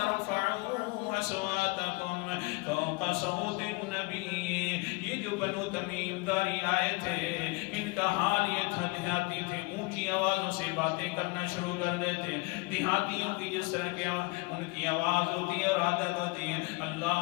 اصواتکم فوق صوت النبی۔ یہ جو بنو تمیم داری آئے تھے، ان کا حال یہ تھا، دیہاتی تھے، اونچی آوازوں سے باتیں کرنا شروع کر دیتے۔ دیہاتیوں کی جس طرح کی ان کی آواز ہوتی ہے اور عادت ہوتی ہے، اللہ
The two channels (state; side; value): quieter; right; 26.4 dB